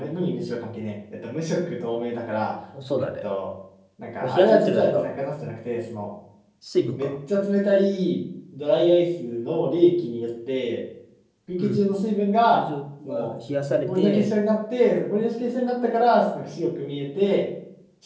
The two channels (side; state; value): both; identical; correlation 1.00